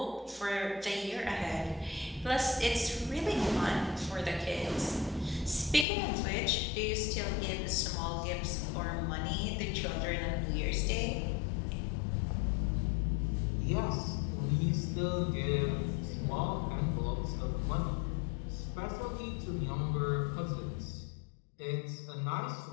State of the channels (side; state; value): right; drops out; at 5.9 s